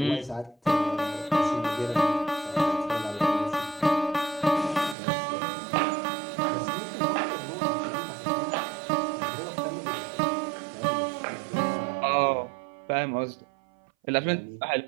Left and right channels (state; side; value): drops out; left; at 5.0 s